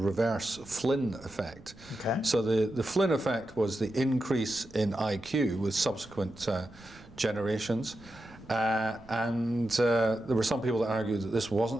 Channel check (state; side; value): noise; right; rumble, 23 dB below the sound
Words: Flynn effect. Okay. So the Flynn effect was the increase in IQ with subsequent generations. And there were some people that argued that this